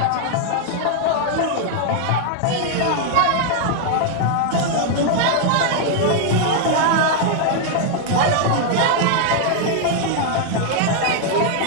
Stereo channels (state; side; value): different; both; correlation 0.00